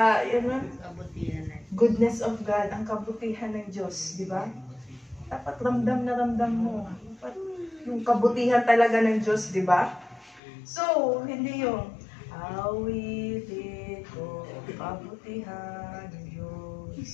goodness of God, ang kabutihan ng Diyos, di ba? Dapat ramdam na ramdam mo. Dapat yung kabutihan talaga ng Diyos, di ba? So, hindi yung awitin ko kabutihan ng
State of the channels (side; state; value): right; drops out; at 10.4 s